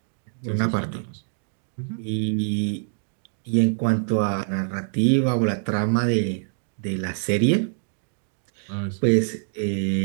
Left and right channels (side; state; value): left; silent; digital silence